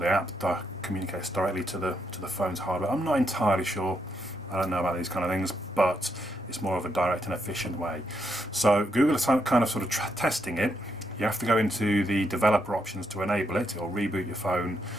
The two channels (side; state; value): both; normal; correlation 0.79